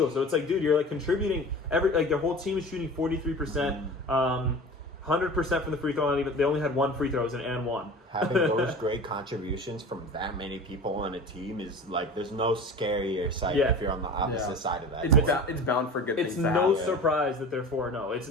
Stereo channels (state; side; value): normal; both; correlation 0.37